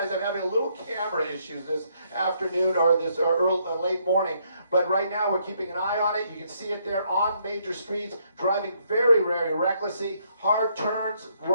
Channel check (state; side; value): inverted; both; correlation -0.71